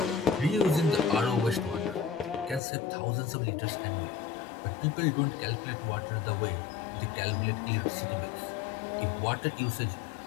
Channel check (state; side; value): drops out; right; at 2.6 s